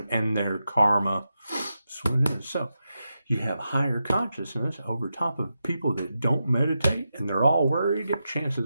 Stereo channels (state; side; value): inverted; both; correlation -0.88